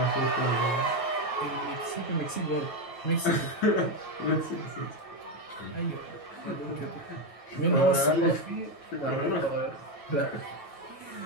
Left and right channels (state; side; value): late; right; 9.2 ms